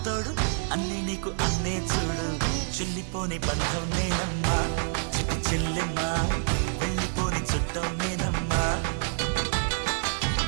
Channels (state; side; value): silent; left; digital silence